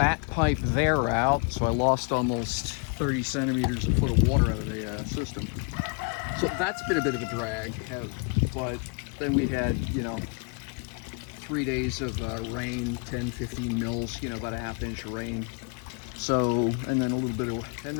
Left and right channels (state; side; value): quieter; right; 37.1 dB